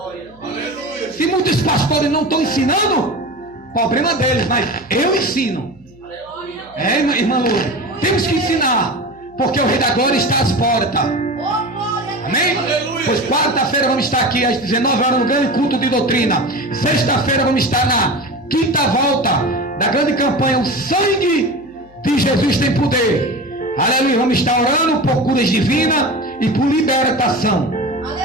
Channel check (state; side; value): noise; right; hum, 27 dB below the sound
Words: Se muitos pastores não estão ensinando, problema deles, mas eu ensino. É, irmã Lourdes, temos que ensinar, porque o Rei da Glória está às portas. Amém? Pois quarta-feira vamos estar aqui às 19 horas no grande culto de doutrina. Sexta-feira vamos estar na quinta volta da grande campanha O Sangue de Jesus Tem Poder. Aleluia, vamos estar orando por curas divinas e por libertação.